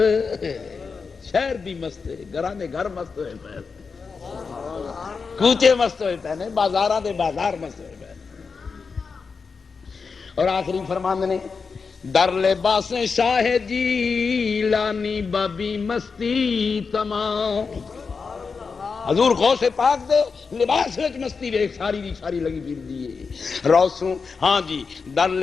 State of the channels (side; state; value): right; quieter; 5.1 dB